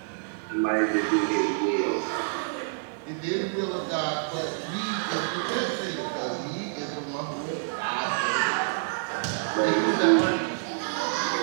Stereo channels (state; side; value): silent; left; 60 dB below the other